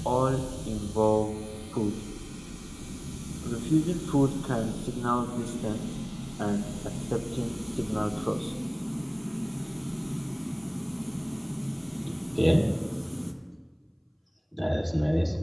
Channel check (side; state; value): both; identical; correlation 1.00